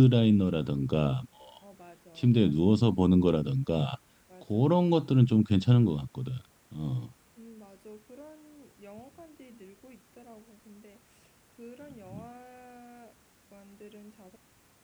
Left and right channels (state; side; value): identical; both; correlation 1.00